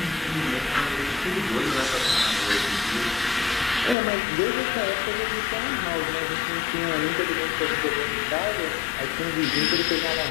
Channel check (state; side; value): drops out; right; at 4.0 s